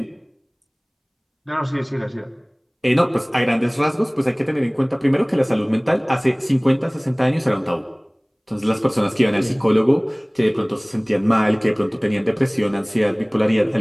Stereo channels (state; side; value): identical; both; correlation 1.00